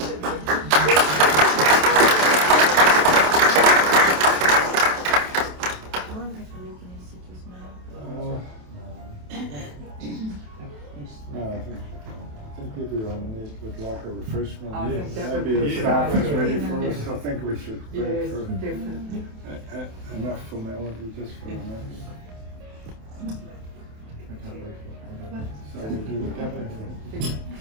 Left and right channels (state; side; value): late; left; 27 ms